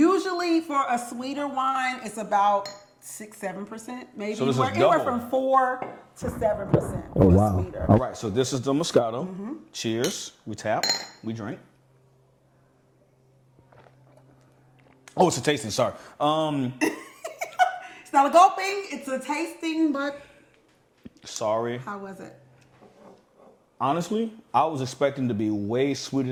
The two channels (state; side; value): identical; both; correlation 1.00